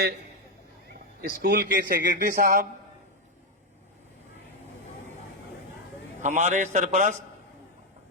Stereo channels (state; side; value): normal; both; correlation 0.04